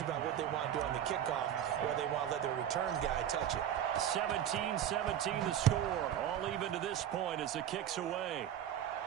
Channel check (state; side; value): quieter; left; 10.4 dB